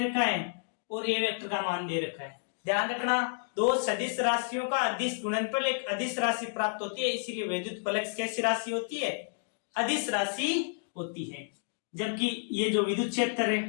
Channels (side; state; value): right; silent; digital silence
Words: है और ए वेक्टर का मान दे रखा है। ध्यान रखना, दो सदिश राशियों का अदिश गुणनफल एक अदिश राशि प्राप्त होती है, इसीलिए विद्युत फ्लक्स कैसी राशि होती है? अदिश राशि होती है। जबकि ये जो विद्युत क्षेत्र